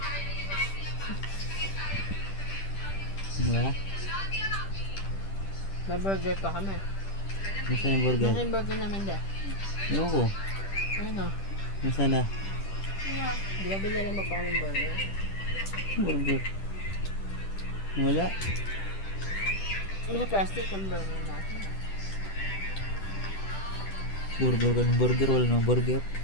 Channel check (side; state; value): right; late; 10 ms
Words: Diba? May burger pa kami. Nasaan yung burger? Nasa yung burger namin de. Ewan ko. Ano? Nasaan na? Di ba bilala mo pa kami burger? Burger. Wala. May plastic ang burger natin. Burger ka ng burger, wala ng burger.